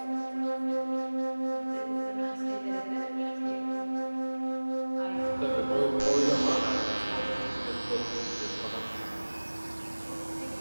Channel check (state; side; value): inverted; both; correlation -1.00